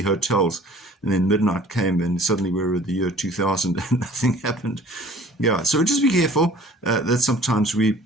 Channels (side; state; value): both; normal; correlation 0.50